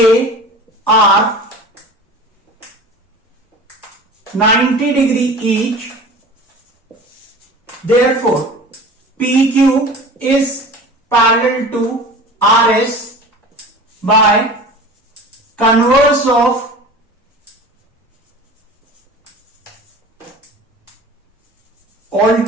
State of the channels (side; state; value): both; normal; correlation 0.38